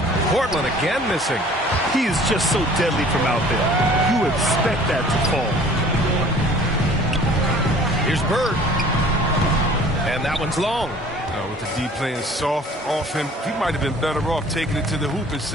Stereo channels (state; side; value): normal; both; correlation 0.50